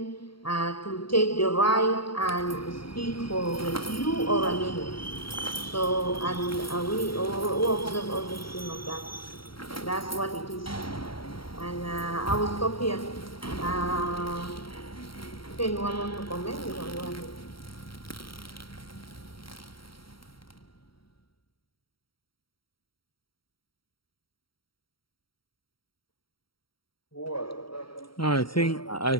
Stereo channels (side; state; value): right; late; 0.74 ms